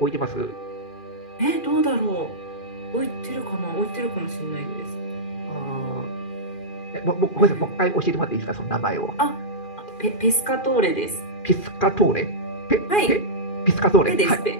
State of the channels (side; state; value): right; late; 2.4 ms